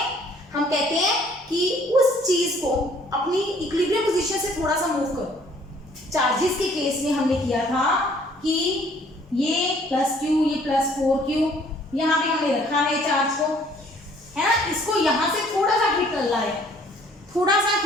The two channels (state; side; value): normal; both; correlation 0.59